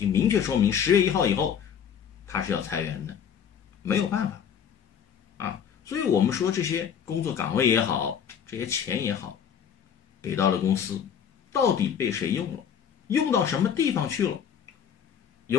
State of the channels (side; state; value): right; quieter; 8.1 dB